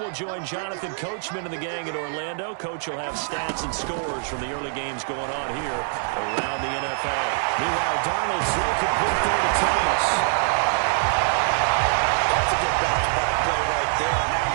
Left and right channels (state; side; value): silent; left; digital silence